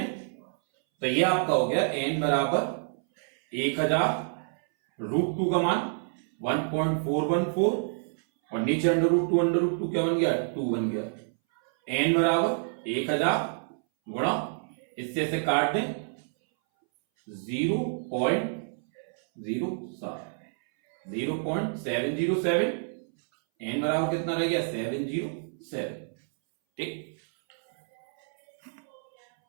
तो ये आपका हो गया n बराबर 1000, √2 का मान 1.414 और नीचे अंडर रूट 2 क्या बन गया 2 बन गया। n बराबर 1000 गुणा, इससे से काट दें 0.707, n बराबर कितना रह गया 707। ठीक।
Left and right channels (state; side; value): silent; left; 59 dB below the other